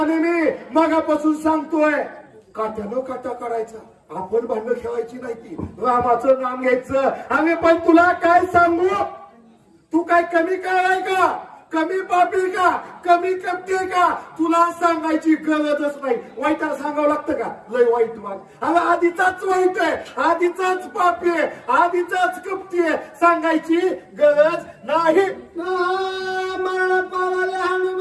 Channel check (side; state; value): both; identical; correlation 1.00